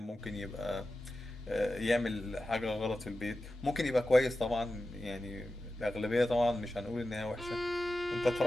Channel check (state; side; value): normal; both; correlation 0.93